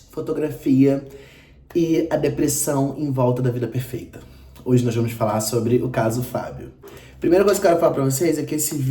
fotografia e a depressão em volta da vida perfeita. Hoje nós vamos falar sobre o caso Fábio. Primeira coisa que eu quero falar pra vocês é que esse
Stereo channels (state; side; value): identical; both; correlation 1.00